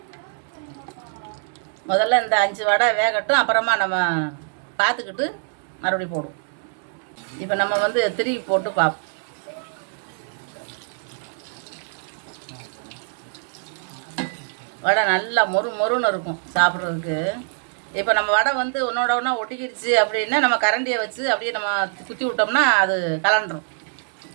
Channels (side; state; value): left; silent; 63 dB below the other